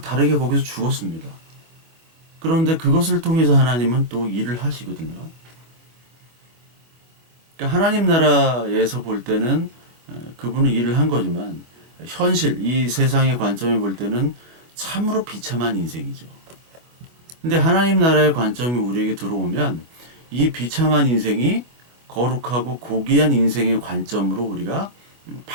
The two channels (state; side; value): late; left; 25 ms